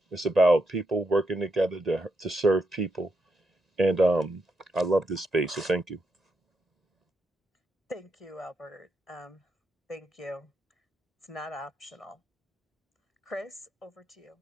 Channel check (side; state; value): both; normal; correlation 0.82